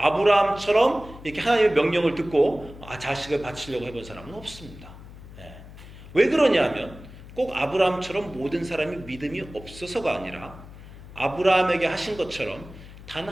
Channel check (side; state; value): left; noise; hum, 17 dB below the sound